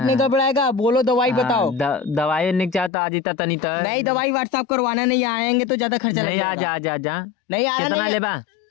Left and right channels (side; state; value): right; drops out; at 2.9 s